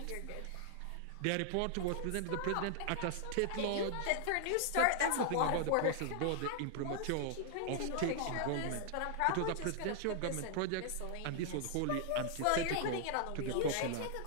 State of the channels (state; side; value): different; both; correlation -0.01